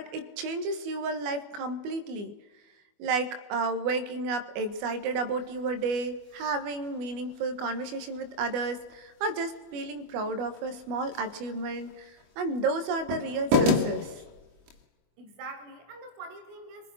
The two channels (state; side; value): late; left; 24 ms